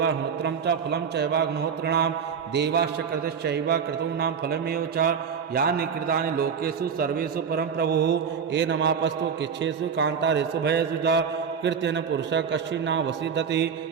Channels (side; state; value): left; quieter; 6.7 dB